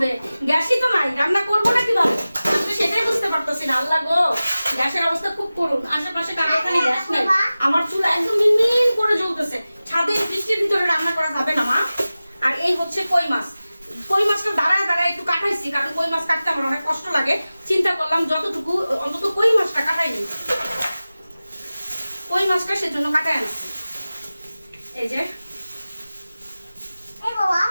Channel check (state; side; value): inverted; both; correlation -0.96